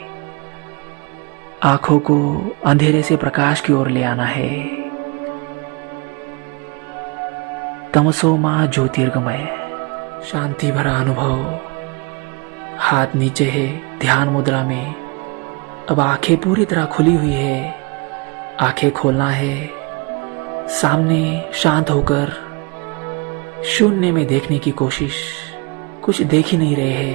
आंखों को अंधेरे से प्रकाश की ओर ले आना है। तमसो मां ज्योतिर्गमय। शांति भरा अनुभव। हाथ नीचे है ध्यान मुद्रा में। अब आंखें पूरी तरह खुली हुई है। आंखें खोलना है, सामने शांत होकर शून्य में देखने की कोशिश। कुछ देख ही नहीं रहे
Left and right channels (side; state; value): left; quieter; 27.8 dB